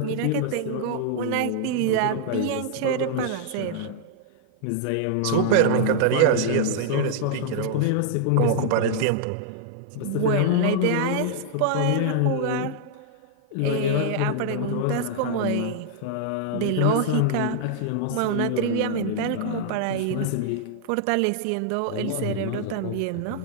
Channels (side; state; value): both; different; correlation -0.01